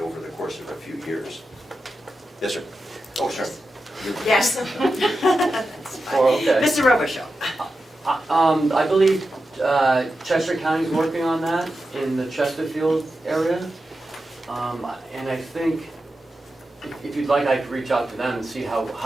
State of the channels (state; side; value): normal; both; correlation 0.90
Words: the course of a few years. Yes, sir. Oh, sorry. Yes. That's fine. Oh, okay. Mr. Robichaud. I believe Chester County's working on that in the Chesterfield area. And I think if you'd like, I could reach out to them and see